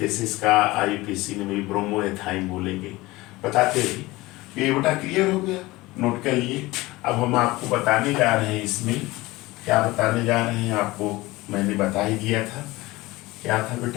इसका IUPAC में भी ब्रोमोएथाइन बोलेंगे, बताते हैं। ये बेटा क्लियर हो गया, नोट कर लिए। अब हम आपको बताने जा रहे हैं, इसमें क्या बताने जा रहे हैं आपको मैंने बता ही दिया था। क्या था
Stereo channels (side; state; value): right; quieter; 20.1 dB